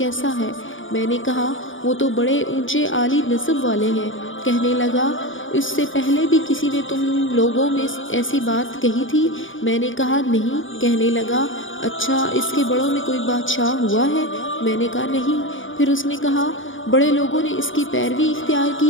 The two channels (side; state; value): right; late; 0.57 ms